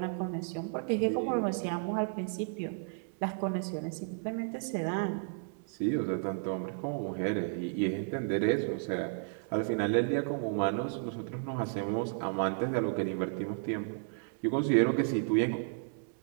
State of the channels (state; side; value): silent; left; 56 dB below the other